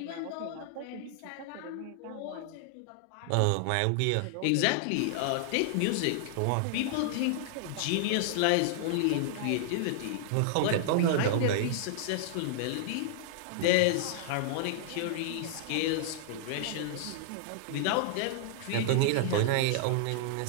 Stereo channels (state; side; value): different; both; correlation -0.01